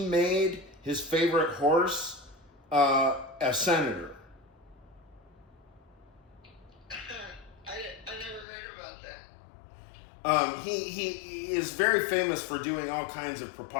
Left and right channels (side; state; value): right; drops out; at 8.5 s